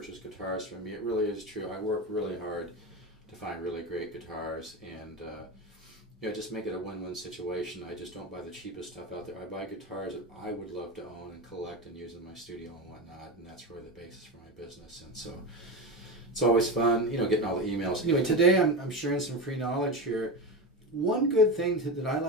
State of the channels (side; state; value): both; normal; correlation 0.20